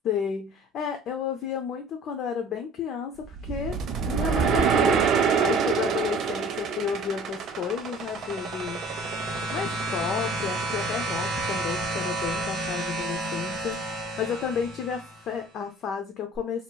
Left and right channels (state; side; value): normal; both; correlation 0.48